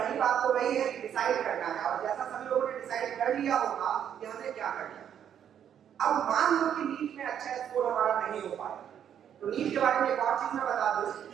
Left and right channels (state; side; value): quieter; left; 9.2 dB